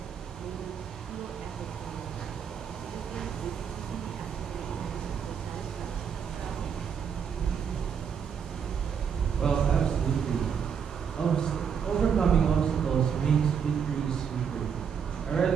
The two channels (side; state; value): left; quieter; 7.2 dB